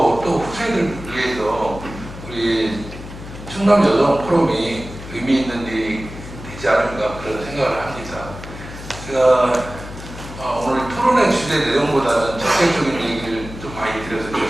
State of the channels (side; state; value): left; noise; hum, 12 dB below the sound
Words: 또 후세들을 위해서 우리 충남 여성 포럼이 의미 있는 일이 되지 않을까 그런 생각을 합니다. 제가 오늘 토론의 주제 내용보다는 적극적인 얘기를 좀 많이 드려서